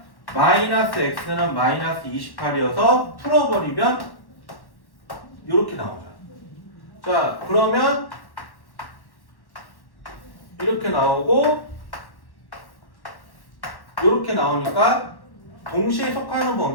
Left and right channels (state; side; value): late; right; 1.1 ms